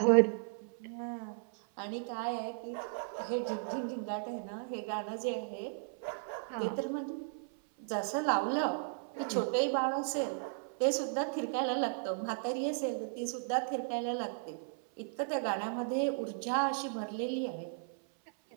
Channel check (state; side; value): silent; left; 54 dB below the other